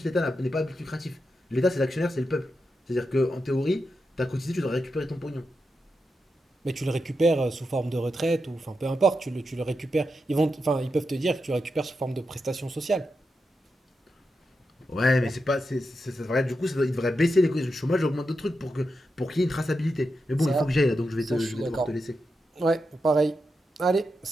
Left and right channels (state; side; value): normal; both; correlation 0.87